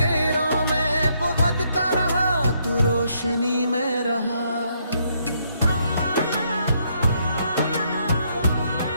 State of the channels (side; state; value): both; inverted; correlation -0.73